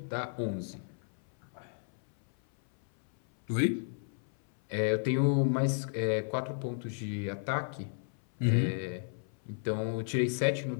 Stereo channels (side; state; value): right; silent; 56 dB below the other